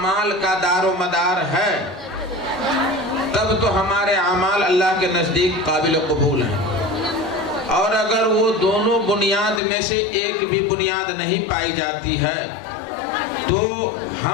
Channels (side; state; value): right; drops out; at 9.6 s